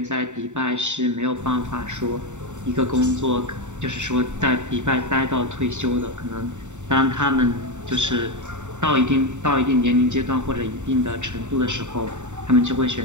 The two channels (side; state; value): left; late; 0.84 ms